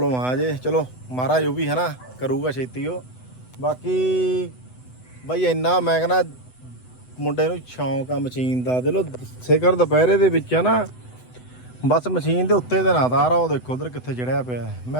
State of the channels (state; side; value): late; right; 8.0 ms